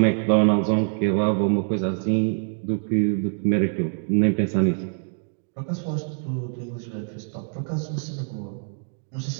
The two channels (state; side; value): silent; left; 59 dB below the other